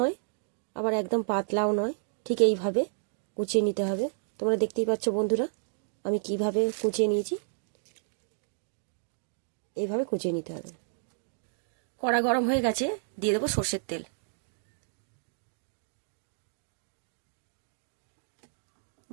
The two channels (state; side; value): silent; left; digital silence